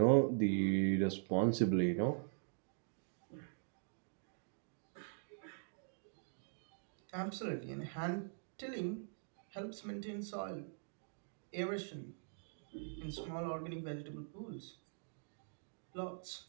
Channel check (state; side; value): silent; left; digital silence